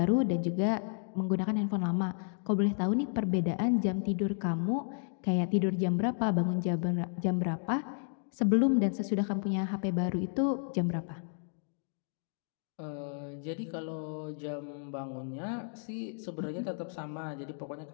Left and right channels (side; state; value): right; silent; digital silence